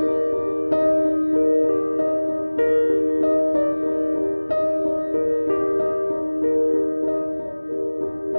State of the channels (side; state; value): both; inverted; correlation -1.00